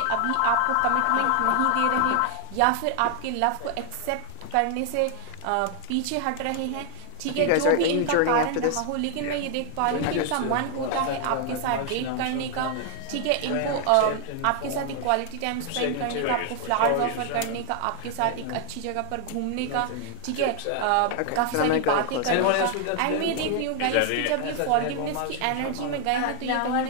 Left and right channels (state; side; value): different; both; correlation 0.00